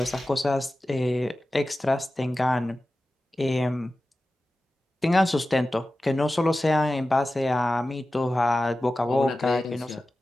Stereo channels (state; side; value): normal; both; correlation 0.95